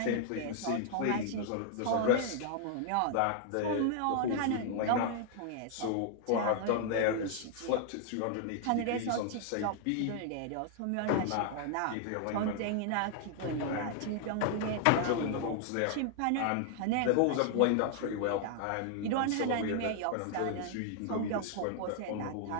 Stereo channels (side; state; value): both; different; correlation 0.00